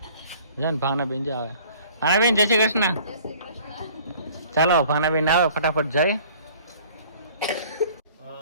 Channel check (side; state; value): both; inverted; correlation -0.52